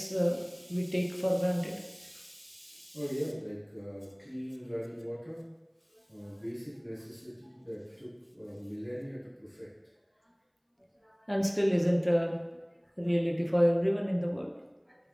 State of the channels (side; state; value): both; identical; correlation 1.00